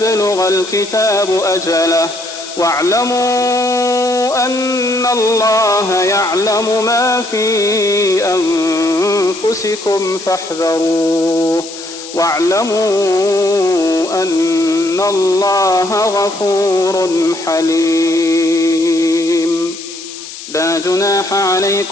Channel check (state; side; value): noise; left; hiss, 13 dB below the sound